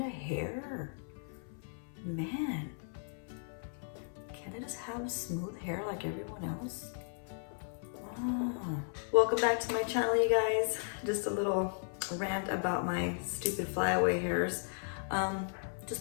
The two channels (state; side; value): silent; right; 54 dB below the other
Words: of hair? Man, can't I just have smooth hair like everyone else? Ah. Welcome back to my channel, you guys. Just a little rant about my stupid flyaway hairs.